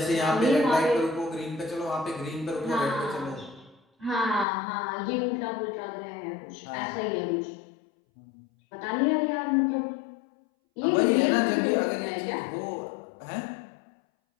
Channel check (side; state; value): right; drops out; at 4.5 s